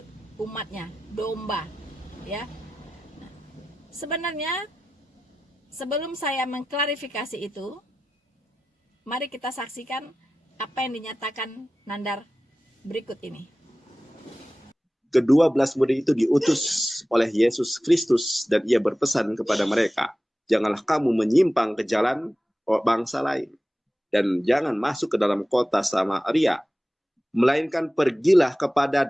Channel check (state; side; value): normal; both; correlation 0.94